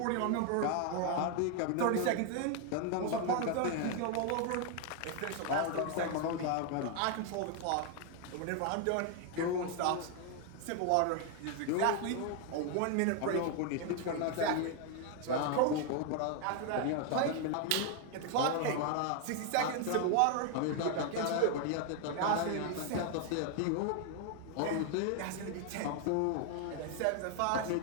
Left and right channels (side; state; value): both; different; correlation 0.01